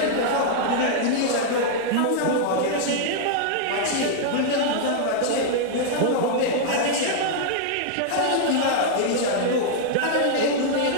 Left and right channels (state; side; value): different; both; correlation -0.01